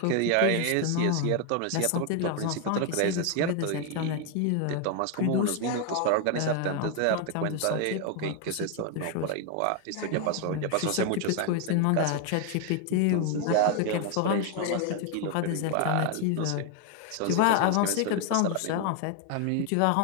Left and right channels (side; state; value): both; different; correlation 0.01